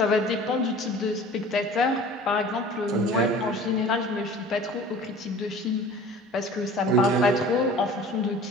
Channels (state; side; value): normal; both; correlation 0.44